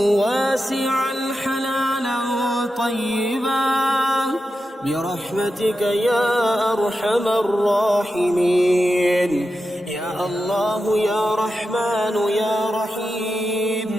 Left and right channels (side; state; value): both; normal; correlation 0.90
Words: واسعا حلالا طيبا برحمتك يا أرحم الراحمين يا الله يا رحمن يا